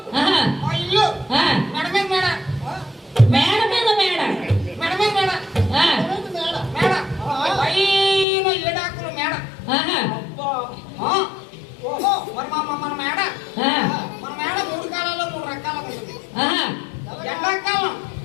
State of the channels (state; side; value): drops out; right; at 8.2 s